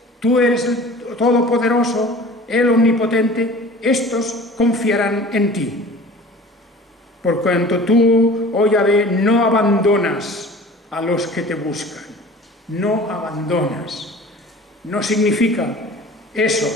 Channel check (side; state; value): both; normal; correlation 0.43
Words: tú eres el Todopoderoso, el Omnipotente. Estos confiarán en ti. Por cuanto tú, oh Yahvé, no abandonas a los que te buscan. No abandonas. No significa eso,